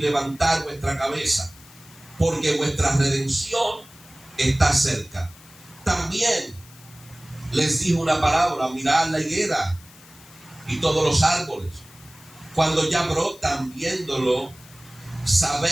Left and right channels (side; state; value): left; noise; hiss, 23 dB below the sound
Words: vuestra cabeza, porque vuestra redención está cerca. También les dijo una parábola: mirad la higuera y todos los árboles, cuando ya brotan, viéndolo,